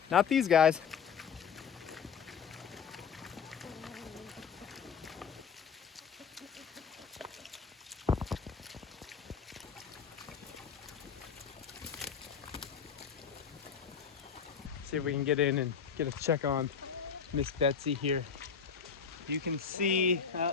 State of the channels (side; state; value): right; quieter; 6.6 dB